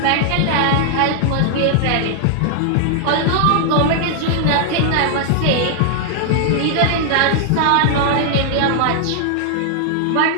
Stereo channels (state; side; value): different; both; correlation 0.00